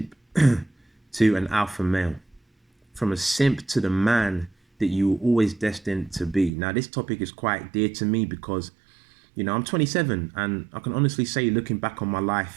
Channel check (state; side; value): drops out; left; at 6.5 s